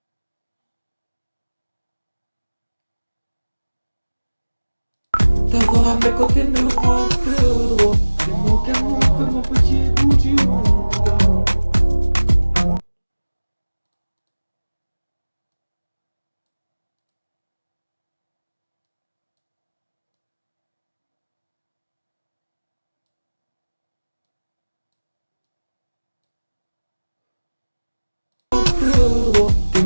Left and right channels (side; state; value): both; inverted; correlation -1.00